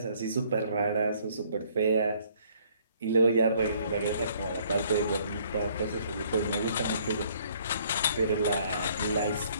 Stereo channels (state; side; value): inverted; both; correlation -0.61